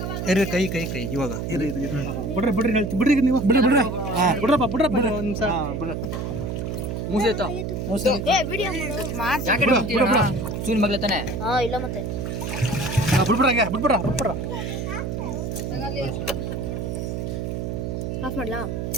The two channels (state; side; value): noise; right; hum, 3 dB below the sound